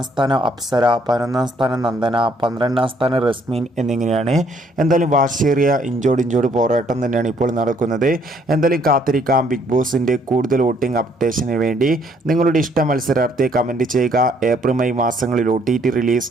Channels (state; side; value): normal; both; correlation 0.66